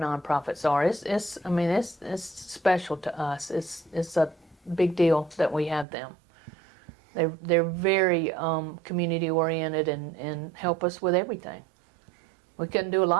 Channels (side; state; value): left; drops out; at 5.9 s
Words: are. It's special to us. It's a big deal that we have them. They're very community oriented and help us with everything. We couldn't do a